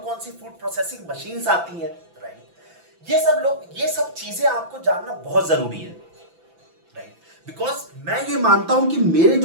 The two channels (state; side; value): late; left; 5.9 ms